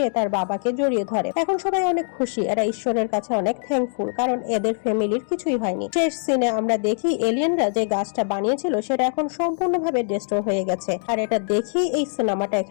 তার বাবাকে জড়িয়ে ধরে। এখন সবাই অনেক খুশি, এরা ঈশ্বরের কাছে অনেক থ্যাঙ্কফুল, কারণ এদের ফ্যামিলির কিছুই হয়নি। শেষ সিনে আমরা দেখি এলিয়েনরা যে গাছটা বানিয়েছিল সেটা এখন সম্পূর্ণভাবে ডিস্ট্রয় হয়ে গেছে, আর এটা দেখি এই সিনেমাটা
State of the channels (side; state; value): right; silent; digital silence